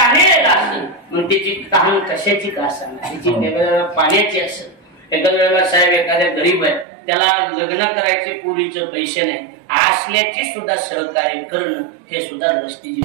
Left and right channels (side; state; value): left; drops out; at 6.9 s